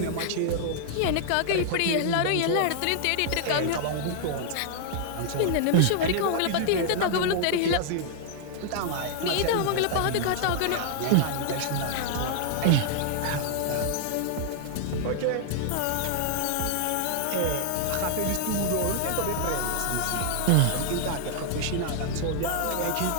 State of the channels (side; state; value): both; different; correlation -0.01